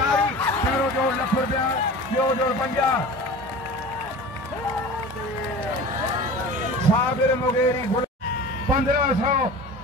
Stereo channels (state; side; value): normal; both; correlation 0.37